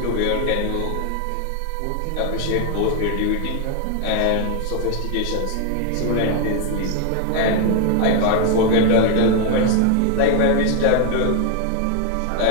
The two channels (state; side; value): different; both; correlation 0.00